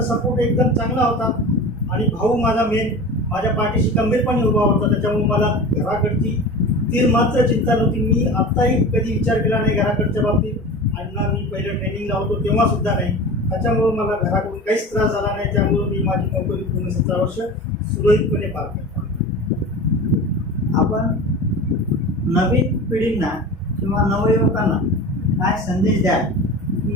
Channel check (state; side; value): normal; both; correlation 0.33